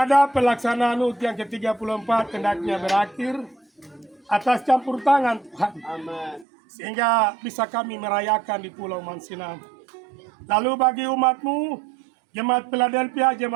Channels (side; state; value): left; drops out; at 6.5 s